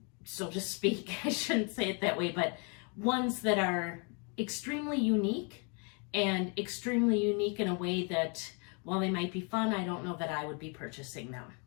so to speak. I shouldn't say it that way, but ones that are extremely unique, and extremely unique in a way that while they might be fun, I don't know that I would be purchasing them.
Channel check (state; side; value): quieter; right; 35.6 dB